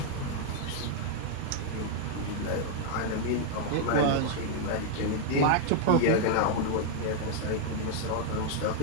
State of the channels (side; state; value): both; different; correlation 0.00